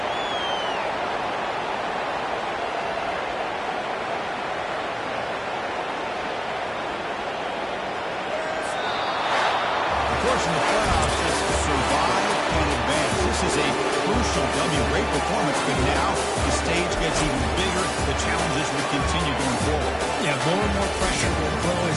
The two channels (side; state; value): both; identical; correlation 1.00